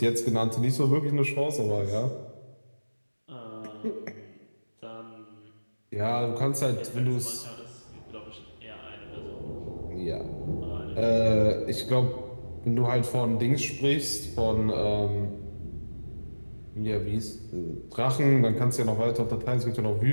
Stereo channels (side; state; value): both; inverted; correlation -1.00